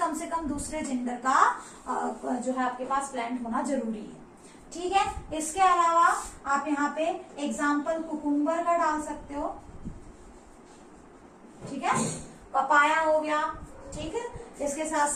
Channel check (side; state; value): both; identical; correlation 1.00